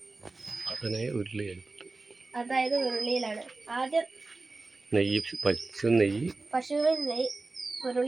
അതായത് ഉരുളിയിലാണ്. ആദ്യം പശുവിൻ നെയ്യ്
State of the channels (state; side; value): quieter; left; 3.4 dB